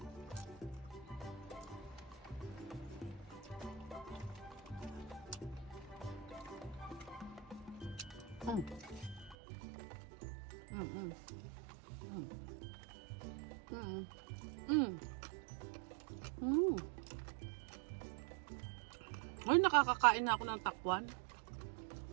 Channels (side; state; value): left; drops out; at 9.3 s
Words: Ay, nakakakain na ako ng takwan.